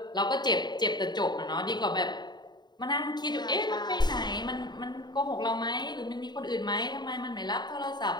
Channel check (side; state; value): right; late; 0.21 ms